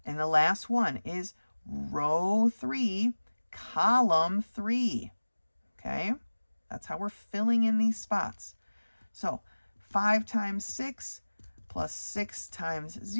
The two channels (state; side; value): inverted; both; correlation -1.00